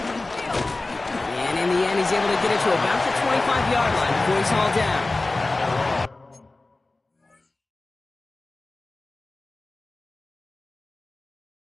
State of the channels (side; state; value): right; quieter; 3.1 dB